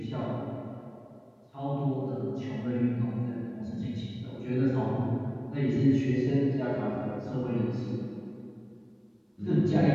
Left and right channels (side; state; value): both; identical; correlation 1.00